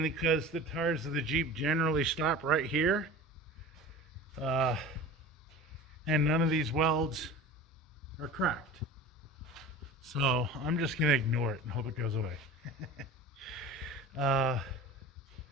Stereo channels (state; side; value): normal; both; correlation 0.36